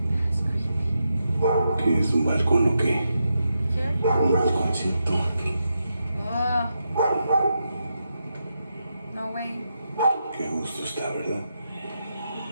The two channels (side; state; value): both; inverted; correlation -0.85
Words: That's creepy. ¿Qué es un balcón o qué? Careful. Un balconcito. No way. Qué gusto está, ¿verdad?